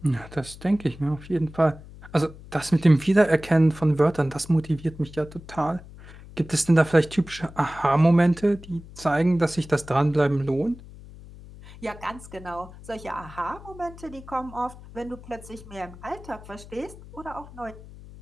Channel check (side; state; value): left; noise; hum, 18 dB below the sound